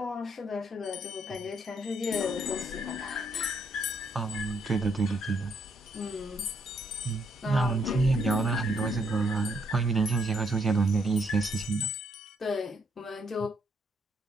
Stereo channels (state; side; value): normal; both; correlation 0.73